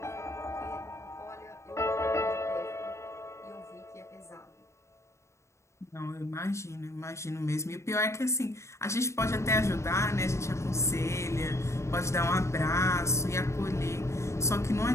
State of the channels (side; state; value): right; late; 0.14 ms